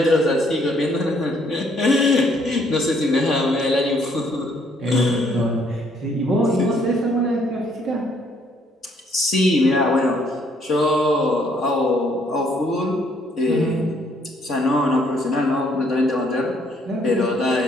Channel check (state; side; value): normal; both; correlation 0.67